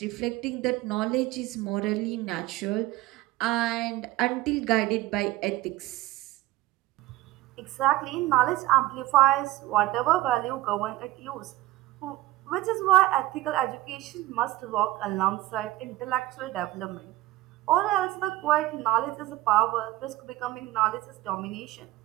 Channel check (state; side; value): quieter; left; 17.0 dB